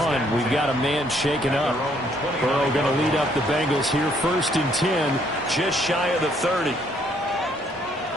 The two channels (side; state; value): both; normal; correlation 0.67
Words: we've got a man shaken up. Burrow going to lead up the Bengals here, 1st and 10, just shy of the 30.